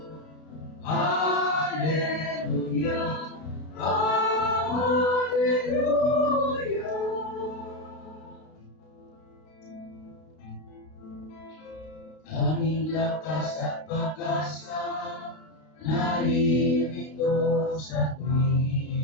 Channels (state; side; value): late; right; 32 ms